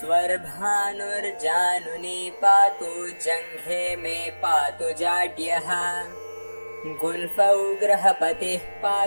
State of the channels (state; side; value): inverted; both; correlation -1.00